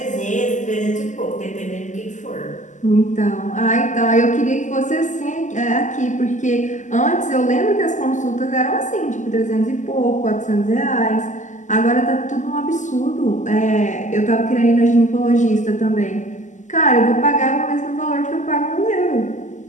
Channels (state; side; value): late; right; 0.36 ms